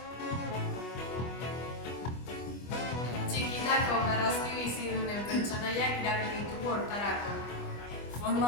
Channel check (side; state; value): right; late; 25 ms